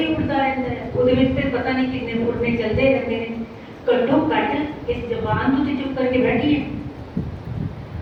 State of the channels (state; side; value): identical; both; correlation 1.00